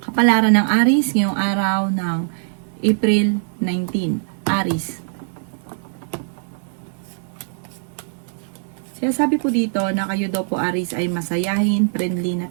Kapalaran ng Aries ngayong araw ng April 19. Aries. Sinasabi po dito na kayo daw po Aries ay masayahin, friendly na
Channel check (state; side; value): silent; left; 65 dB below the other